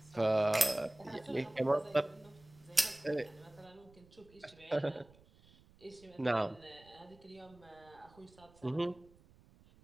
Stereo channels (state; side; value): noise; right; rumble, 26 dB below the sound